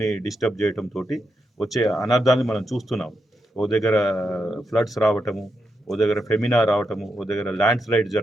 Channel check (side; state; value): both; normal; correlation 0.84